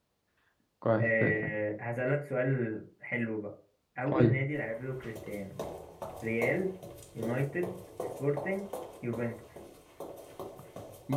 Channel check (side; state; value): both; identical; correlation 1.00